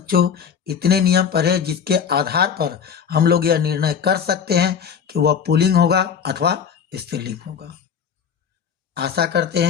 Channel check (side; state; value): right; quieter; 7.3 dB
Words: इतने नियम पढ़े जिसके आधार पर हम लोग यह निर्णय कर सकते हैं कि वह पुल्लिंग होगा अथवा स्त्रीलिंग होगा। आशा करते